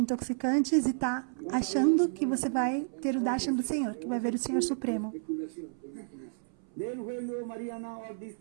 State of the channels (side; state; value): left; silent; 57 dB below the other